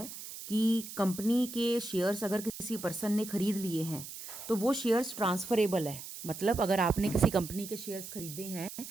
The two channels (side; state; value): right; noise; hiss, 11 dB below the sound